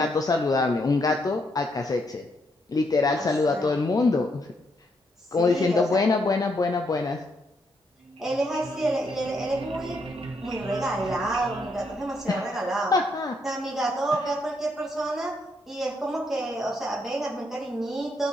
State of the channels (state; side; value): normal; both; correlation 0.76